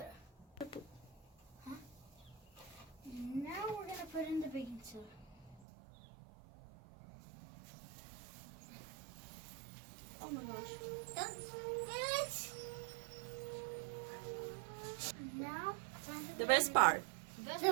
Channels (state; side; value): drops out; left; at 5.6 s